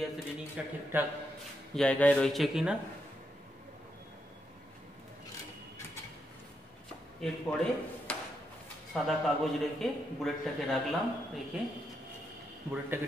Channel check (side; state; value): both; normal; correlation 0.81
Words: রিডিংটা ঠিকঠাক জায়গায় রয়েছে কিনা। এরপরে সাদা কাগজ রেখে বুলেটটাকে রাখলাম, রেখে বুলেটটাকে